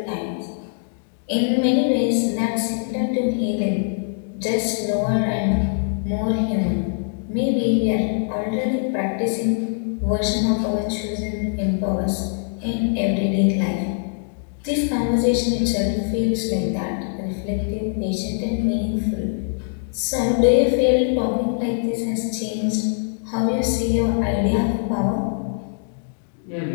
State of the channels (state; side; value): silent; right; digital silence